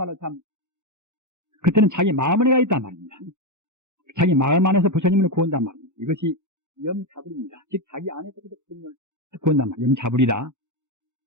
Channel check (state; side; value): late; left; 0.84 ms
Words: 참 그때는 자기 마음 안에가 있단 말입니다. 자기 마음 안에서 부처님을 구한단 말입니다. 이것이 염차불입니다. 즉 자기 안에서 부처님을 구한단 말이에요. 염차불이다.